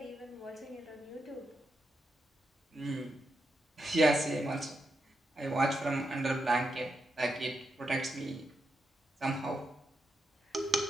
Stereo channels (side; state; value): both; normal; correlation 0.84